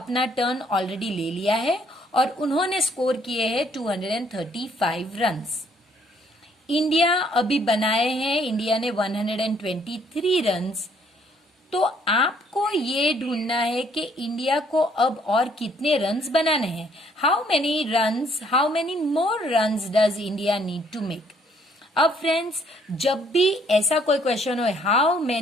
टर्न ऑलरेडी ले लिया है और उन्होंने स्कोर किए हैं 235 रन्स। इंडिया अभी बनाए हैं, इंडिया ने 123 रन्स। तो आपको ये ढूंढना है कि इंडिया को अब और कितने रन्स बनाने हैं। How many more runs does India need to make. अब फ्रेंड्स, जब भी ऐसा कोई क्वेश्चन हो हाउ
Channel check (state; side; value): normal; both; correlation 0.65